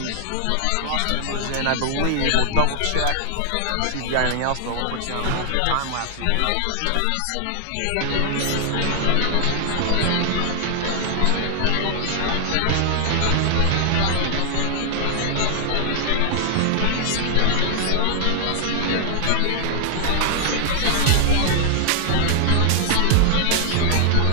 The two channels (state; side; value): different; both; correlation -0.01